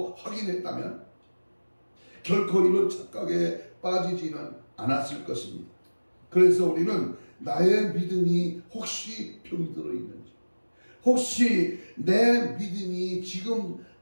확인했다면 결코 이런 착각에 빠지지는 않았을 것입니다. 그래서 우리는 나의 믿음이 혹시 병이 들어있는지, 혹시 내 믿음이 지금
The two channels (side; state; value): both; inverted; correlation -1.00